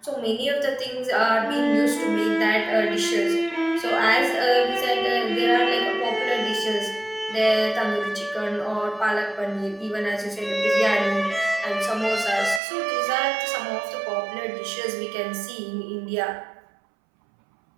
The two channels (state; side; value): drops out; left; at 12.6 s